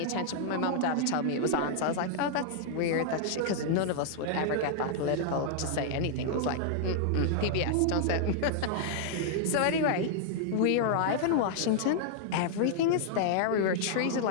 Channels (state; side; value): different; both; correlation -0.01